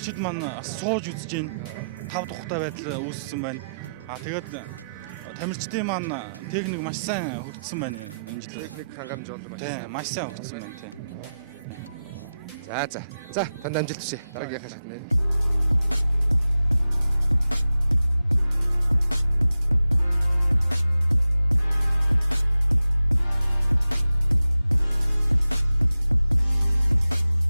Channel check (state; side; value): inverted; both; correlation -0.90